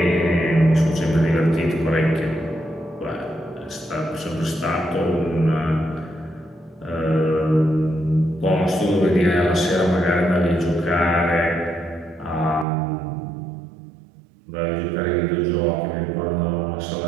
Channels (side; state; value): left; drops out; at 12.7 s